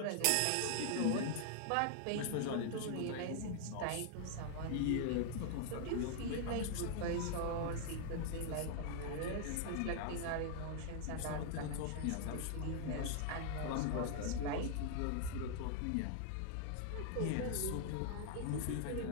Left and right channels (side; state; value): both; different; correlation -0.01